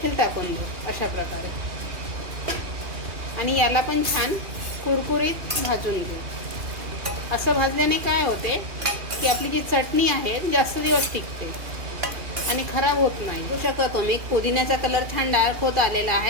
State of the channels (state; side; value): late; left; 2.7 ms